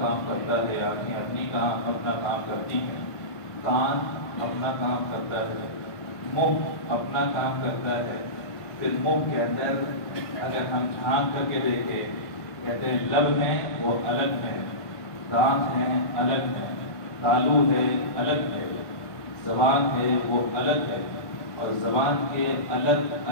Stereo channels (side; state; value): right; late; 1.5 ms